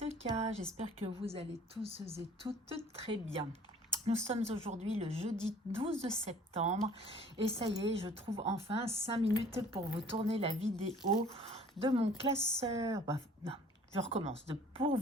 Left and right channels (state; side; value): normal; both; correlation 0.52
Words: K. J'espère que vous allez tous et toutes très bien. Nous sommes aujourd'hui le jeudi 12 septembre et ça y est, je trouve enfin 5 minutes pour vous tourner la vidéo de mon classeur. Non, je recommence. Pour